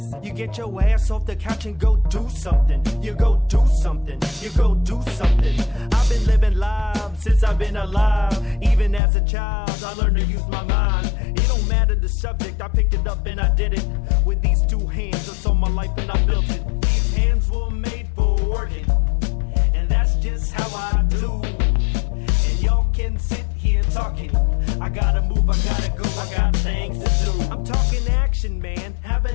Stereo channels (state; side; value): drops out; right; at 9.0 s